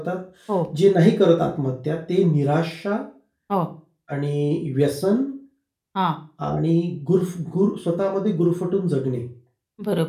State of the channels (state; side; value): identical; both; correlation 1.00